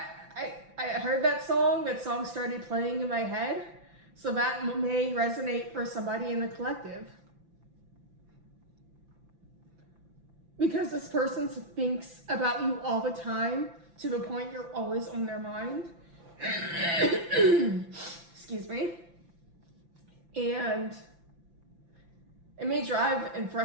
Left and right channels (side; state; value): left; late; 5.9 ms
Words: I heard that song started playing in my head, so that may resonate for somebody in the collective. Because this person thinks about you all the time, to the point you're always on their mind. Excuse me. And it may drive and